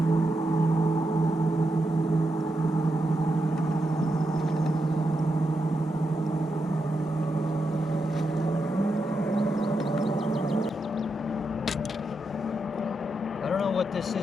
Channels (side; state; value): both; normal; correlation 0.85